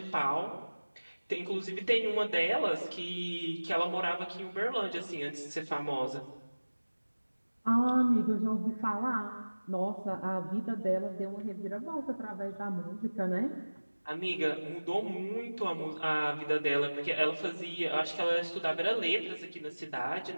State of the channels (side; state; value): both; inverted; correlation -1.00